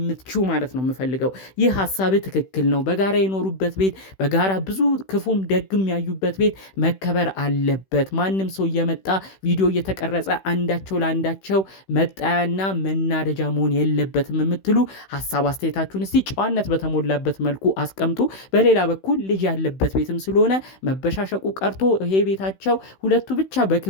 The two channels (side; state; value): right; late; 16 ms